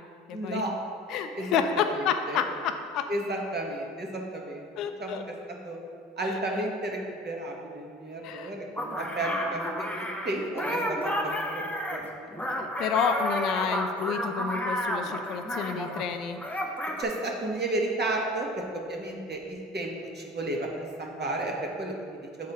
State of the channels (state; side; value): normal; both; correlation 0.43